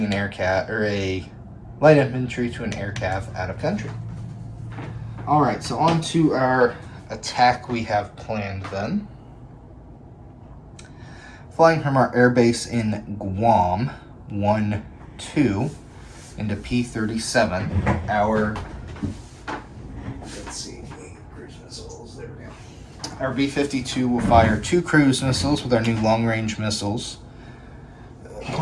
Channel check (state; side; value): identical; both; correlation 1.00